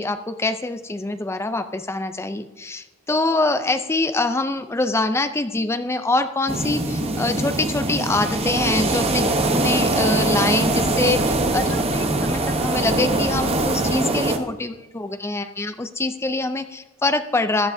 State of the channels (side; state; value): both; normal; correlation 0.46